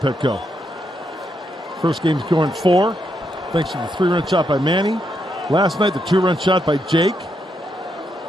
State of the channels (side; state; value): both; normal; correlation 0.80